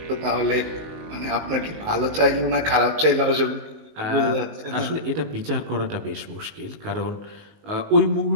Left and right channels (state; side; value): late; left; 19 ms